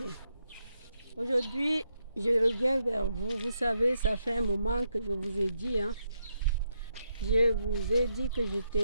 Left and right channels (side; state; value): both; inverted; correlation -0.80